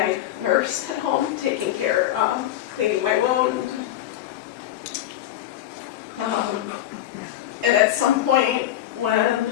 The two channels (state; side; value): quieter; right; 12.8 dB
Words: nurse at home, taking care, cleaning my wound. And at some point when,